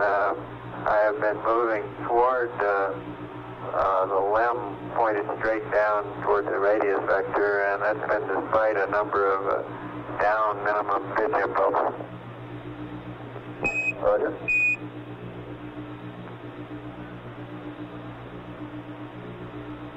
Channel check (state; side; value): identical; both; correlation 1.00